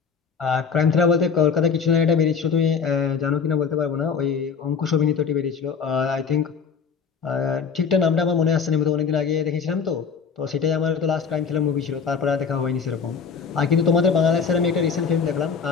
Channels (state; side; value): quieter; right; 6.0 dB